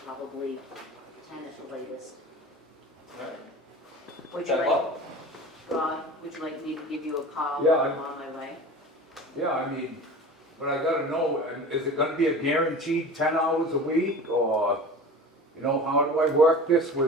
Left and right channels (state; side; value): normal; both; correlation 0.37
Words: probably 10 at the latest. Alright. Would you 10 like, o'clock? Rob, would you like me to give you a call Yeah, while I'm on my way? Yeah, I mean, but I gotta know, is it gonna be a guaranteed 10 hours a week, or, you know, how do I work this